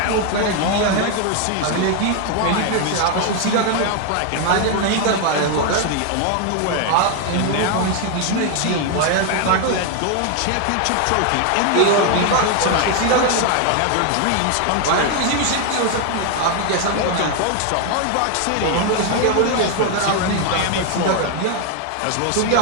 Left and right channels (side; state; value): both; different; correlation 0.01